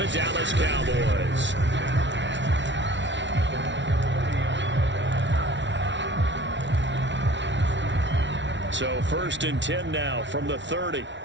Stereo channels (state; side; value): late; left; 0.53 ms